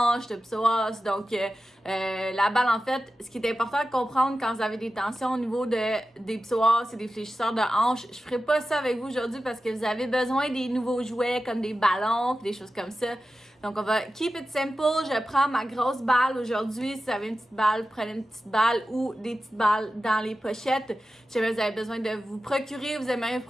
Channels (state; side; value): normal; both; correlation 0.93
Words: de psoas. Donc, la balle, en fait, ce qui est important de comprendre quand vous avez des tensions au niveau des psoas et des fléchisseurs de hanches, je ferai pas ça avec vous aujourd'hui parce que vous avez besoin des nouveaux jouets comme des ballons, des choses comme ça. Donc, on va keep it simple. Je prends ma grosse balle aujourd'hui. Si vous avez une petite balle, prenez une petite balle ou des petites balles dans les pochettes. Si jamais vous avez besoin de vous procurer, vous aimeriez vous